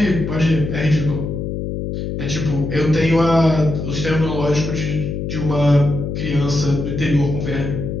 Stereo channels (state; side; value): noise; left; hum, 4 dB below the sound